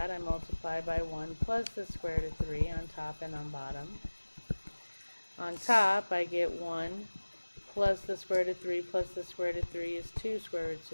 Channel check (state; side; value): inverted; both; correlation -1.00